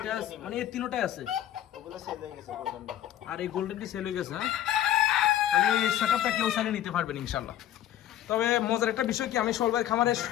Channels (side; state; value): right; quieter; 12.0 dB